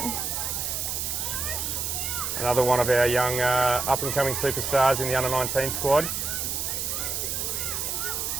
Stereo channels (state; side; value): noise; right; hiss, 2 dB below the sound